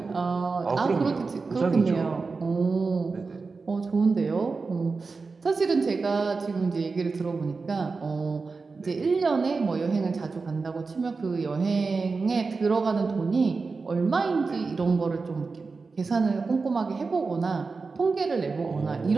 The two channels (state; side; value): quieter; left; 4.3 dB